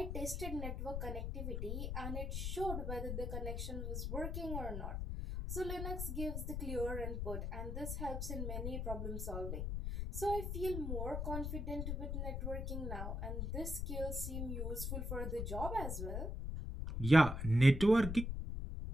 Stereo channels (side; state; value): left; noise; rumble, 2 dB below the sound